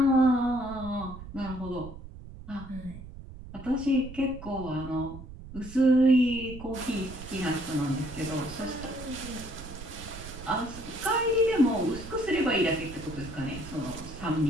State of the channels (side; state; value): right; noise; rumble, 13 dB below the sound